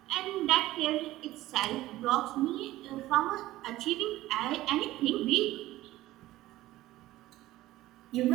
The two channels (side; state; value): left; quieter; 16.2 dB